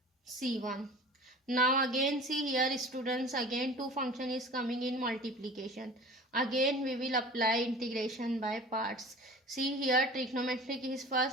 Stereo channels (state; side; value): normal; both; correlation 0.40